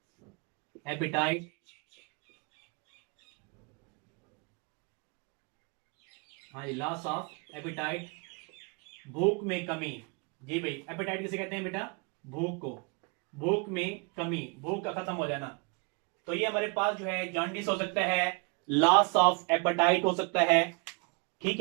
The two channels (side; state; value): left; quieter; 33.4 dB